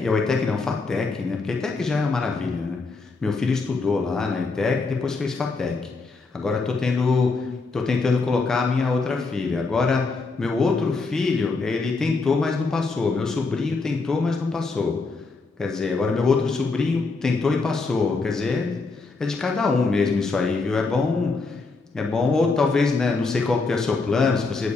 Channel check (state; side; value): quieter; right; 4.0 dB